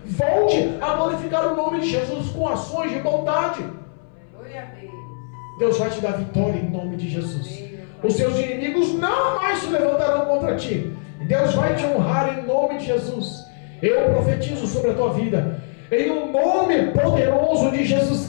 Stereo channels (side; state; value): right; silent; 61 dB below the other